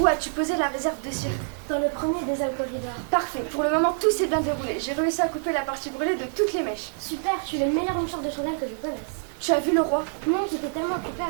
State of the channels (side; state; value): left; silent; digital silence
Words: as-tu posé la réserve de cirque? Dans le premier des alcoolides. Parfait. Pour le moment, tout s'est bien déroulé. J'ai réussi à couper la partie brûlée de toutes les mèches. Super, tu es le meilleur lanceur de chandelle que je connaisse. Tu as vu le roi? Non, j'étais tellement occupée à